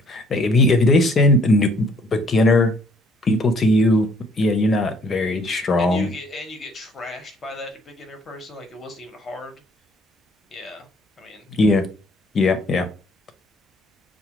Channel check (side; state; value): both; normal; correlation 0.61